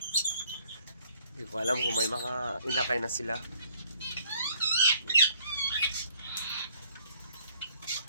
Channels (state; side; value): inverted; both; correlation -0.62